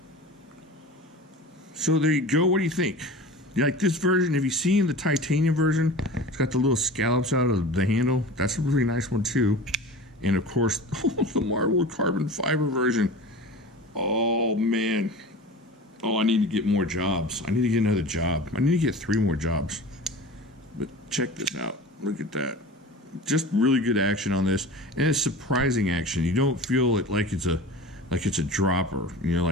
So there you go. What do you think? You like this version? Have you seen the titanium version? It's got the little scallops out of the handle. That's a really nice one too. And of course, the marbled carbon fiber version. Oh man. Oh, I need to get more jobs. I need to get another job. I need to get 3 more jobs. But check this out. Look at that. Just really good action on this, and it's surprising action. You don't feel it like it's a dropper,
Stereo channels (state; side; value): normal; both; correlation 0.36